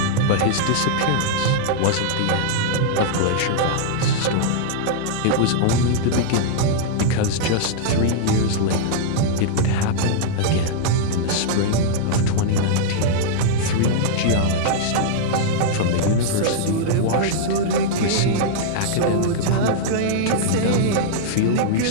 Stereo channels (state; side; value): different; both; correlation -0.01